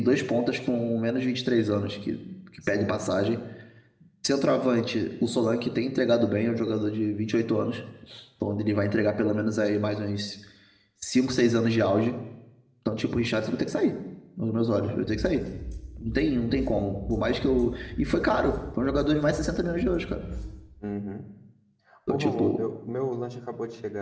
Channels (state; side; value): identical; both; correlation 1.00